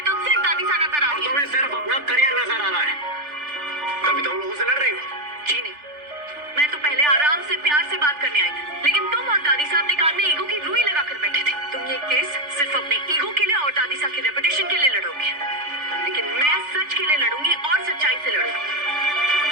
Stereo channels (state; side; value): late; left; 3.4 ms